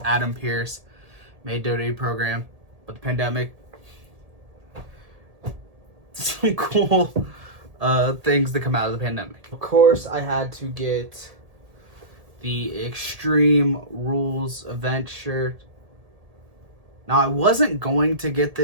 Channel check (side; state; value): left; late; 1.8 ms